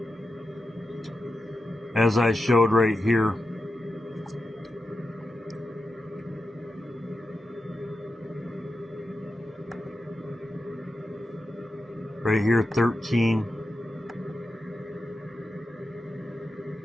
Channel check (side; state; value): both; normal; correlation 0.90